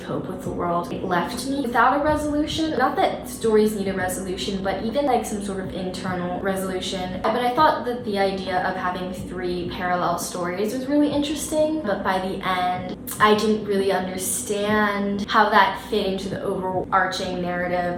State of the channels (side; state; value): both; identical; correlation 1.00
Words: with the world. It left me without a resolution. Not that stories need a resolution, but even like some sort of internal resolution. But I thought that the idea of having 3 parallel stories was really interesting, but by the end, I didn't really understand how that fit into the overarching